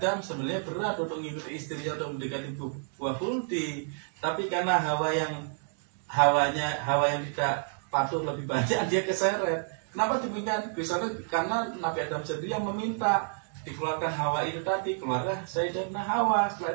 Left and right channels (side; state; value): left; silent; digital silence